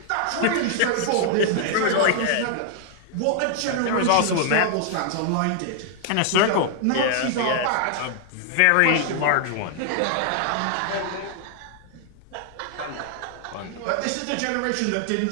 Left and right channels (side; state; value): both; different; correlation 0.00